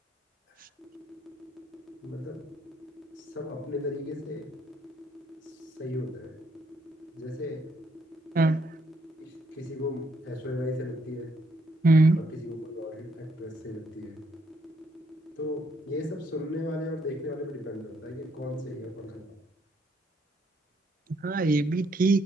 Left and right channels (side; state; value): both; normal; correlation 0.71